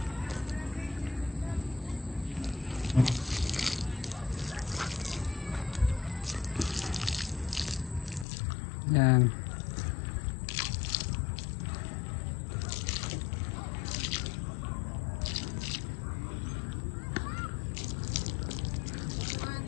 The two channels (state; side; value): drops out; right; at 8.2 s